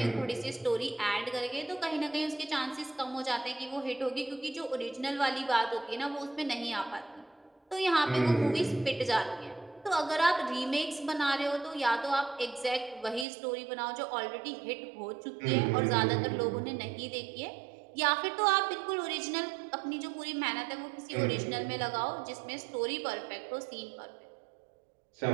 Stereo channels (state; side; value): drops out; left; at 13.2 s